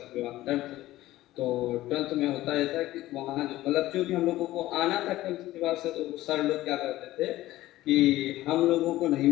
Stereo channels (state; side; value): quieter; right; 16.0 dB